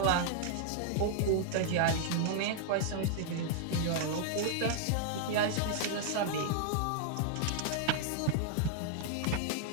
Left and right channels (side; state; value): both; different; correlation -0.01